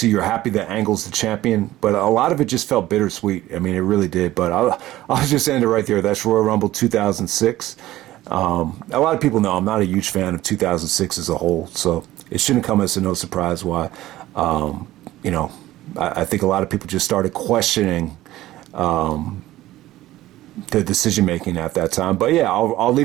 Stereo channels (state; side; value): quieter; left; 15.7 dB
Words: you're happy that Angle's the champion, but a lot of it just felt bittersweet. I mean, it really did. But I'll just end it right there. That's Royal Rumble 2006. A lot of people know I'm not a huge fan of 2006 as a whole, so it shouldn't come as a no surprise why, I think a lot of people just started questioning the decision making at that time. But yeah, I'll